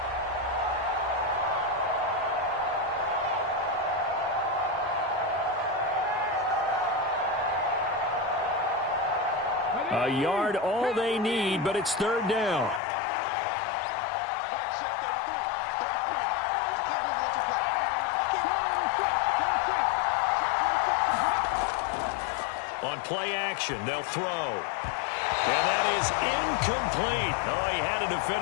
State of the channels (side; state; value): right; drops out; at 12.8 s